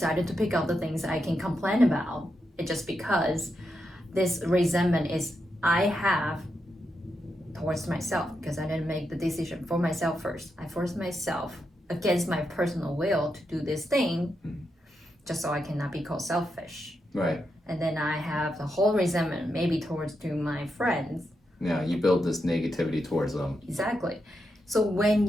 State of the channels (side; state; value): both; normal; correlation 0.85